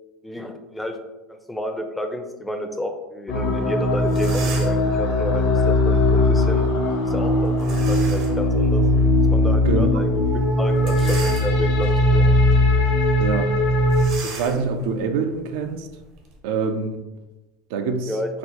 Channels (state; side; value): normal; both; correlation 0.44